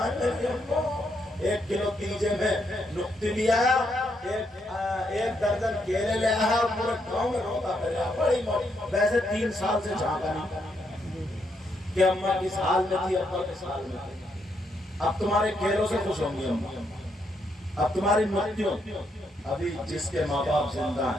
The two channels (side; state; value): both; normal; correlation 0.77